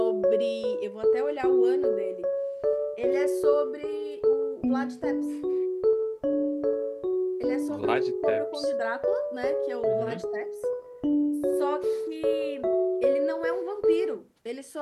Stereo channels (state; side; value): identical; both; correlation 1.00